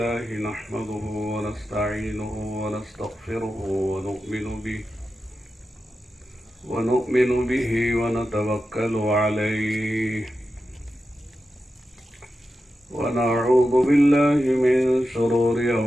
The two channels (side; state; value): both; normal; correlation 0.91